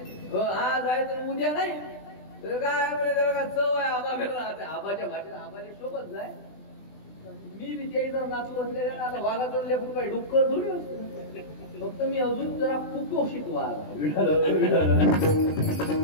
आज आहे तर उद्या नाही तर काय म्हणजे त्याला चव आहे. आबा राहते आबाच्या भाषेत आबाच्या सोबत जाय. मी बी त्या नाचू असलेल्या आता वाघाचं लेकरू काही डुक्कर थोडी असतो. फक्त मी अजून जरा कुपोषित वाघ. असो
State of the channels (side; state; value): right; late; 20 ms